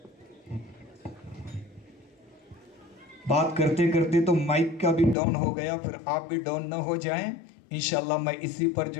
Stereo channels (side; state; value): right; drops out; at 5.2 s